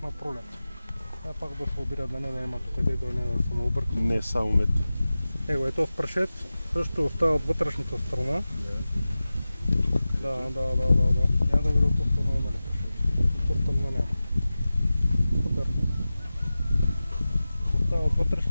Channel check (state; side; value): inverted; both; correlation -0.96